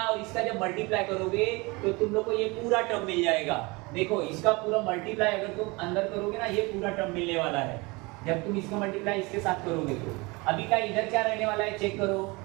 और इसका जब मल्टीप्लाई करोगे तो तुम लोग को ये पूरा टर्म मिल जाएगा। देखो इसका पूरा मल्टीप्लाई अगर तुम अंदर करोगे ना, ये पूरा टर्म मिलने वाला है जब तुम इसका मल्टीप्लाई इसके साथ करोगे। तो अभी का इधर क्या रहने वाला है चेक करो,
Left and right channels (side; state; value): left; quieter; 25.5 dB